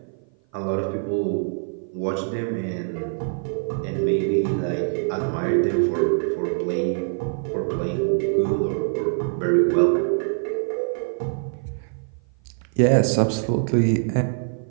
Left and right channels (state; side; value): silent; left; 55 dB below the other